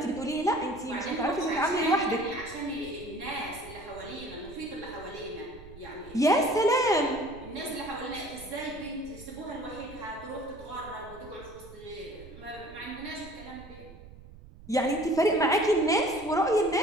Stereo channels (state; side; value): noise; right; rumble, 18 dB below the sound